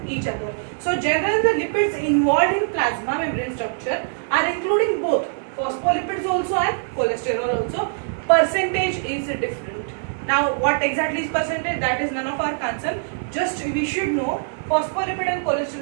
each other. So generally the lipids involved in plasma membrane structure are including both phospholipids also and cholesterol also. Percentage is different. Now what exactly is percentage, that is none of our concern. Just we should know phospholipid and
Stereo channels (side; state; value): left; silent; digital silence